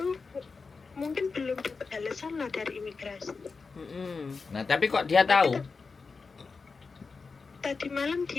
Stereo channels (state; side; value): quieter; right; 4.6 dB